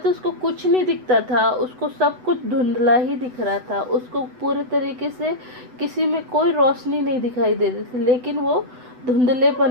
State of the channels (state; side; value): late; left; 8.0 ms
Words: उसको कुछ नहीं दिखता था, उसको सब कुछ धुंधला ही दिख रहा था, उसको पूरे तरीके से किसी में कोई रोशनी नहीं दिखाई दे रही थी, लेकिन वो धुंधलेपन